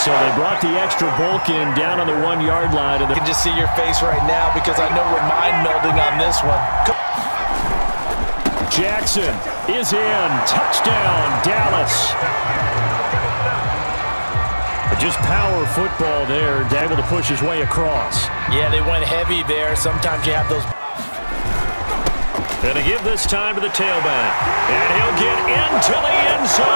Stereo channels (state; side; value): inverted; both; correlation -1.00